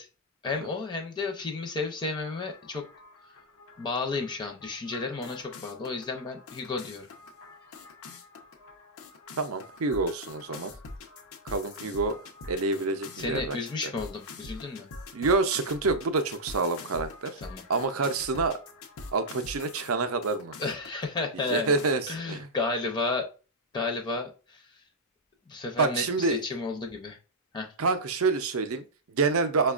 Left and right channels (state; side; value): normal; both; correlation -0.07